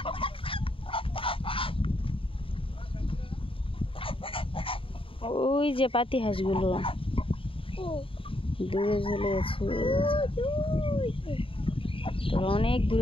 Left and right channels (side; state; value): right; late; 0.26 ms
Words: ওই যে পাতি হাঁসগুলো দূরে চলে গেছে, তোরা অনেক